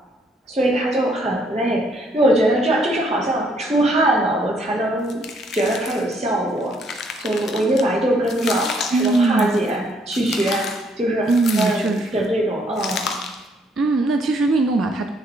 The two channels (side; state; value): both; normal; correlation 0.68